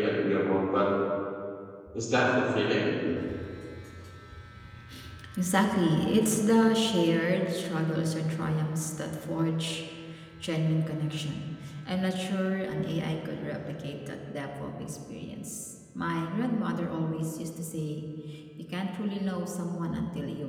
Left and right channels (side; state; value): both; identical; correlation 1.00